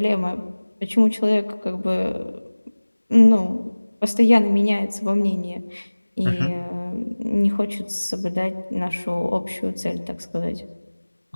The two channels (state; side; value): inverted; both; correlation -1.00